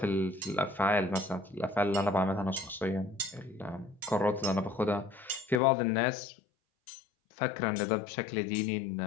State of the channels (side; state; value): right; drops out; at 5.6 s